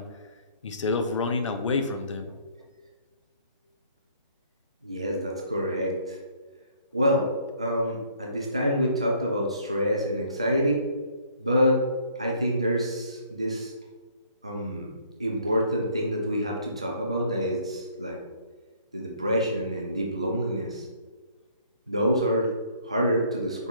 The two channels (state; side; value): inverted; both; correlation -0.61